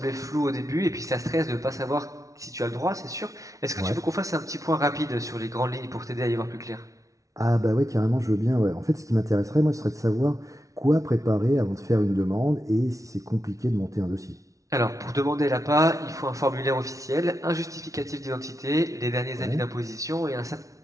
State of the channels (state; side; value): late; left; 0.16 ms